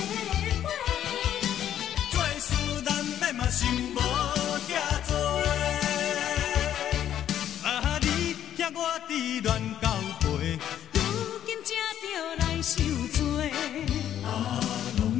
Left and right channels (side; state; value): right; quieter; 10.6 dB